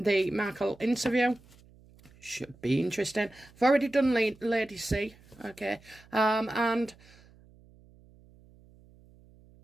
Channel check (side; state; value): right; noise; hum, 26 dB below the sound